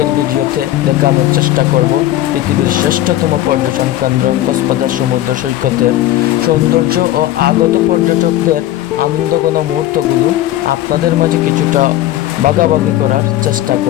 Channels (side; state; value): right; quieter; 14.0 dB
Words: ভিডিওতে দেখানোর চেষ্টা করব পৃথিবীর শ্রেষ্ঠতম পর্যটন কেন্দ্র কক্সবাজার সমুদ্র সৈকতের সৌন্দর্য ও আগত পর্যটকদের আনন্দঘন মুহূর্তগুলো আপনাদের মাঝে কিছুটা ভাগাভাগি করার চেষ্টা